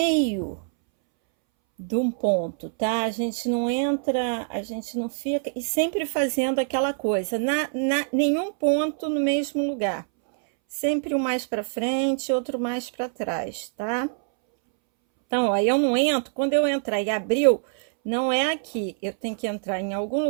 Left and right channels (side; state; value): left; silent; 62 dB below the other